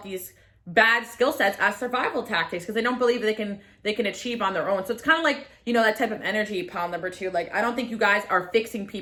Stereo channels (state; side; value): identical; both; correlation 1.00